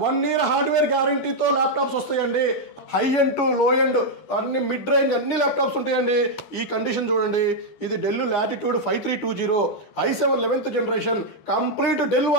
1 ఇయర్ హార్డ్వేర్ గ్యారంటీతో ల్యాప్టాప్స్ వస్తాయండి. High end to low end అన్ని మిడ్ రేంజ్ అన్ని ల్యాప్టాప్స్ ఉంటాయండి. ఈ కండిషన్ చూడండి, ఇది Dell Latitude 5320 i7 11th generation complete Dell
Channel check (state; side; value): late; right; 12 ms